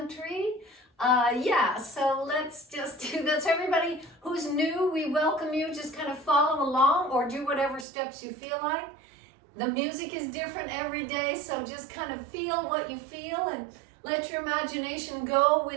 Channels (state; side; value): drops out; left; at 7.9 s